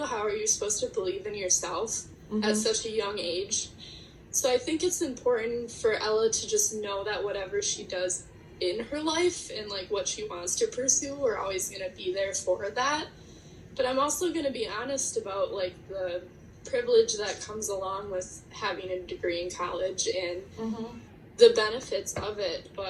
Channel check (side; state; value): both; identical; correlation 1.00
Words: how are you supposed to believe in yourself at such a young age? So I think it's important for Ella to just know that whatever she does in her life and, like, what she wants to pursue, we're always going to be there for that. But I'm also going to be honest about, like, the privilege that comes along with having a degree in college and the benefits of it.